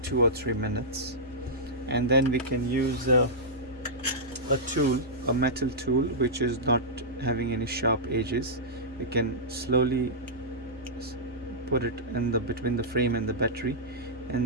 2 or 3 minutes. And then we can use a tool, a metal tool which is not having any sharp edges. We can slowly put it in between the frame and the battery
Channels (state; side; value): normal; both; correlation -0.12